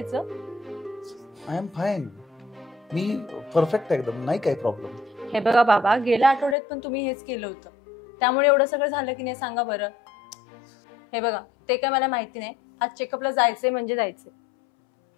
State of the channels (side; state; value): right; drops out; at 6.6 s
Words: I am fine. Me perfect एकदम, नाही काही प्रॉब्लेम. हे बघा बाबा, गेल्या आठवड्यात पण तुम्ही हेच केलं होतं, त्यामुळे एवढं सगळं झालं की नाही सांगा बरं. हे बघा, ते काय मला माहिती नाही. आज चेकअपला जायचंय म्हणजे जायचंय.